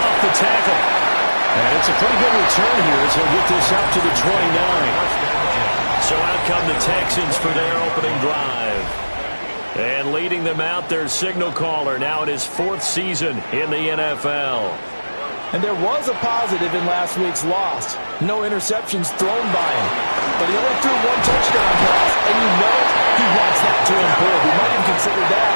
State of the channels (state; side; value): inverted; both; correlation -1.00